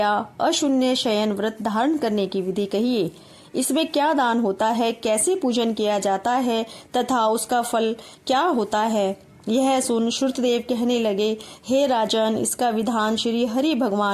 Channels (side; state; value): both; identical; correlation 1.00